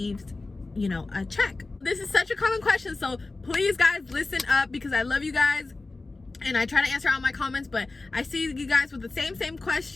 you know, a check. This is such a common question, so please guys listen up, because I love you guys and I try to answer all my comments, but I see you guys with the same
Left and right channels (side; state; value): right; quieter; 3.4 dB